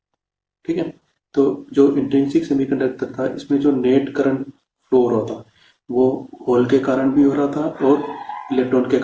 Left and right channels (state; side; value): identical; both; correlation 1.00